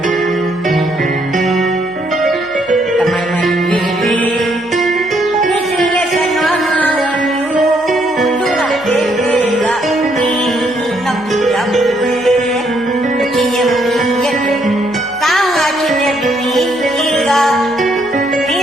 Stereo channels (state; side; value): noise; left; hum, 30 dB below the sound